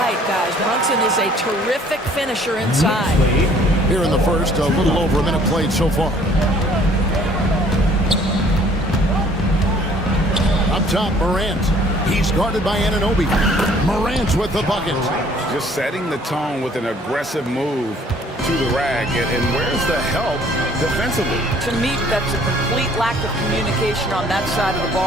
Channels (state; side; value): normal; both; correlation 0.57